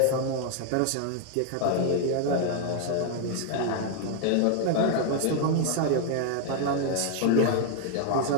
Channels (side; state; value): both; different; correlation 0.00